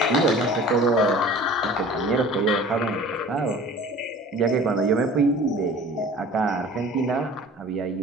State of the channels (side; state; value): both; normal; correlation 0.44